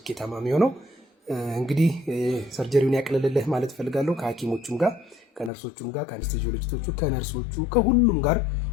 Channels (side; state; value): right; drops out; at 5.5 s